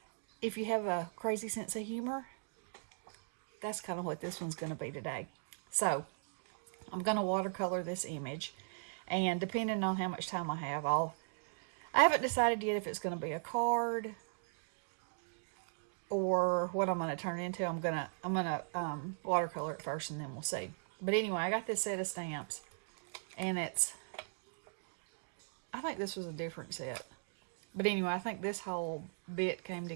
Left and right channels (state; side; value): silent; left; digital silence